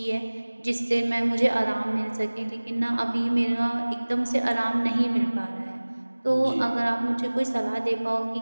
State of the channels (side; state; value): both; inverted; correlation -1.00